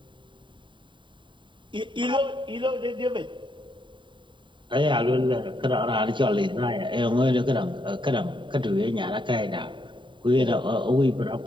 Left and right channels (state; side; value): late; left; 0.23 ms